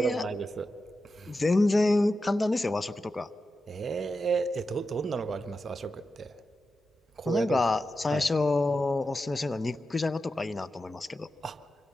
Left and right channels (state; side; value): normal; both; correlation 0.90